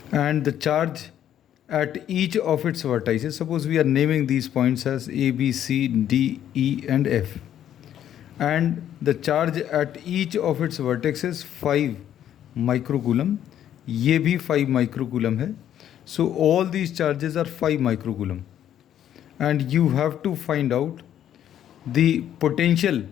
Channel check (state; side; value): quieter; right; 10.7 dB